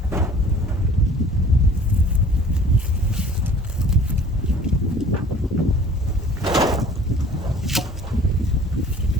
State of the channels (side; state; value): both; normal; correlation 0.49